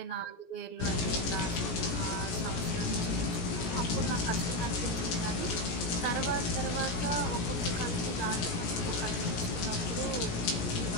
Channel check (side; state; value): right; late; 17 ms